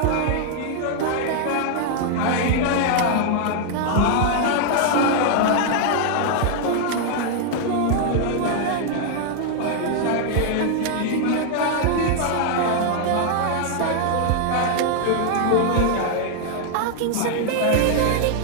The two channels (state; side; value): different; both; correlation 0.00